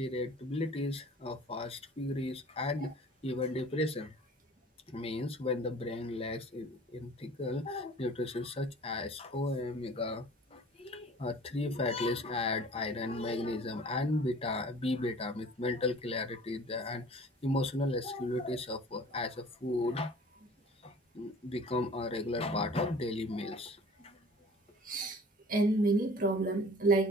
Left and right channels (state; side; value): normal; both; correlation 0.46